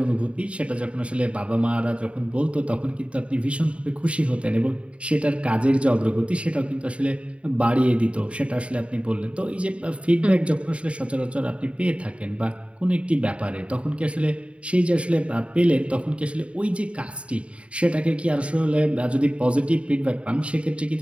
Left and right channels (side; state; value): left; late; 0.062 ms